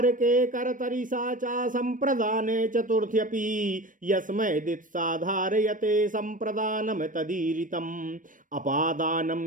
करतरिसा च संप्रदाने चतुर्थ्यपि यस्मै दित्साधारयते संप्रदानं तदीरितम्।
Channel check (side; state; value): left; late; 0.38 ms